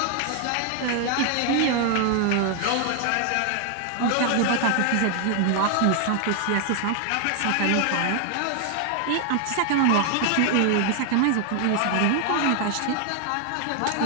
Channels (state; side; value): different; both; correlation 0.00